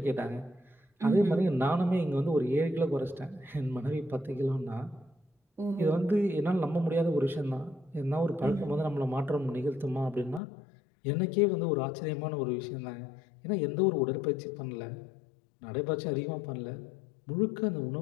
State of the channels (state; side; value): drops out; right; at 10.4 s